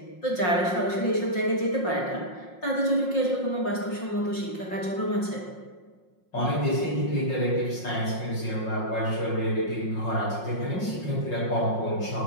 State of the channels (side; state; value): right; late; 5.5 ms